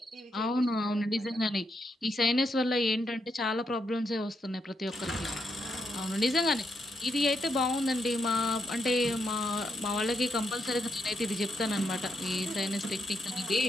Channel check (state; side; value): normal; both; correlation 0.81